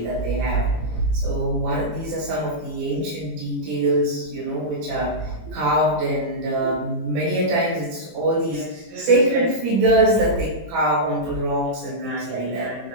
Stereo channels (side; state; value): left; late; 18 ms